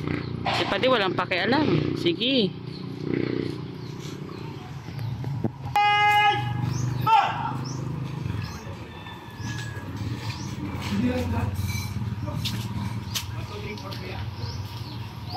Si Padi walang pakialam. Sige.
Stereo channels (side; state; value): both; identical; correlation 1.00